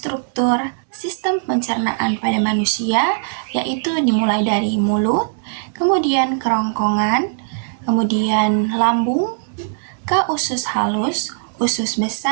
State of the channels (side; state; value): left; silent; 66 dB below the other